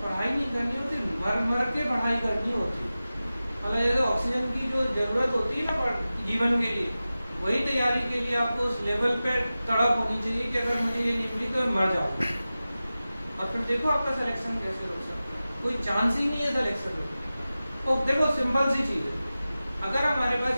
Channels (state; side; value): inverted; both; correlation -0.95